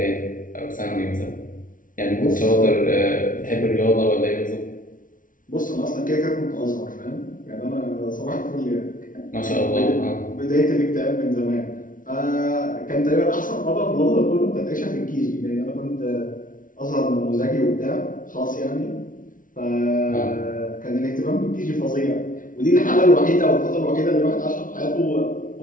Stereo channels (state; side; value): late; right; 0.38 ms